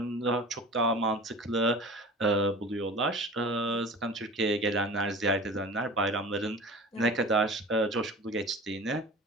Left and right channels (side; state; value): both; normal; correlation 0.38